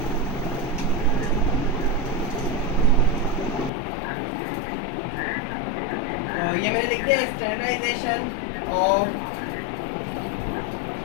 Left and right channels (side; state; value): right; drops out; at 3.7 s